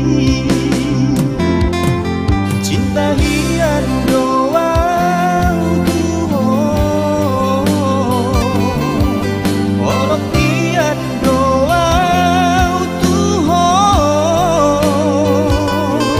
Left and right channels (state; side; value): identical; both; correlation 1.00